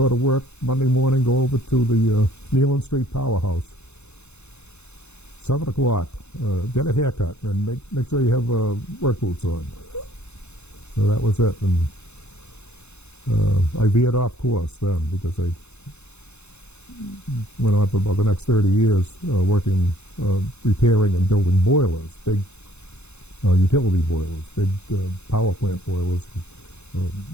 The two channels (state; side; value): late; right; 0.81 ms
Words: to work Monday morning, go over to the Nealon Street Powerhouse. 7 o'clock, get a haircut, and make sure you have work boots on. So that was it, and I veered off course then because I went on for about the next 30 years working, repairing and building boilers, big utility boilers, big power plant boilers,